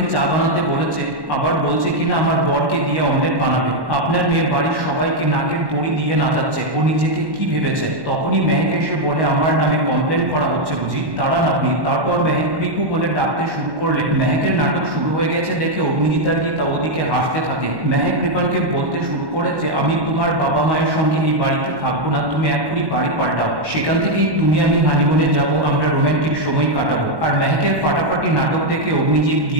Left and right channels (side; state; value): left; late; 1.1 ms